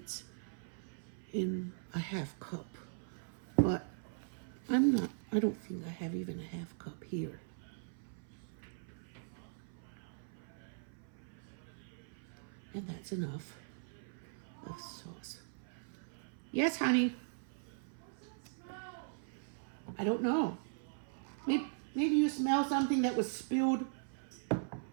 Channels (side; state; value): left; silent; 51 dB below the other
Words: in a half cup. But I don't think I have even a half cup here. And that's enough of sauce. Yes, honey. I don't know. Maybe you smell something that was spilled